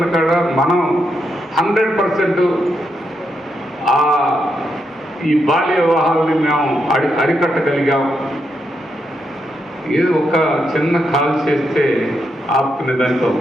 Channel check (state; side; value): normal; both; correlation 0.82